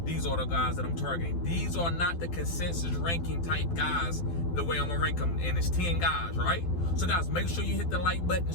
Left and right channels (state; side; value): late; right; 12 ms